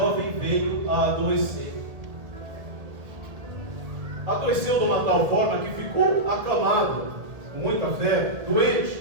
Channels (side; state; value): left; late; 1.8 ms